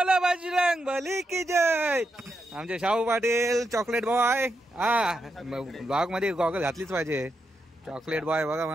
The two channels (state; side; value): normal; both; correlation 0.84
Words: बजरंग बली की जय. आमचे शाहू पाटील चॉकलेट बॉय. हा, ब्लॉग मध्ये गॉगल घातलीच पाहिजे. चॉकलेट बॉय बघा